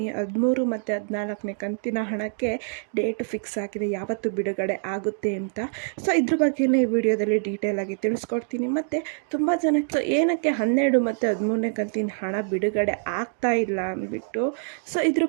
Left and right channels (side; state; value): left; silent; digital silence